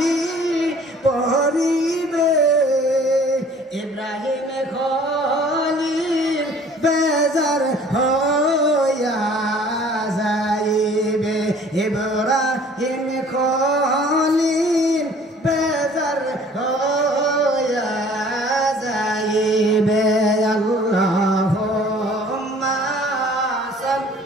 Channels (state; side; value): normal; both; correlation 0.52